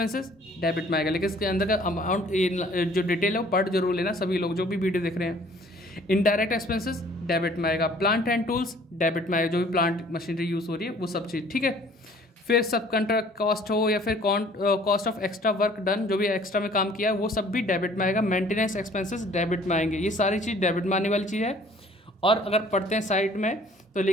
डेबिट में आएगा, लेकिन इसके अंदर का अमाउंट जो डिटेल है वो पढ़ जरूर लेना सभी लोग जो भी वीडियो देख रहे हैं। इनडायरेक्ट एक्सपेंसेस डेबिट में आएगा। प्लांट एंड टूल्स डेबिट में आएगा, जो भी प्लांट मशीनरी यूज़ हो रही है वो सब चीज़। ठीक है। फिर सब कंट्रैक्ट कॉस्ट हो या फिर cost of extra work done, जो भी एक्स्ट्रा में काम किया है वो सब भी डेबिट में आएगा। मेंटेनेंस एक्सपेंसेस डेबिट में आएंगे। ये सारी चीज़ डेबिट में आने वाली चीज़ है। और अगर पढ़ते हैं साइड में तो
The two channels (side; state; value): both; normal; correlation 0.55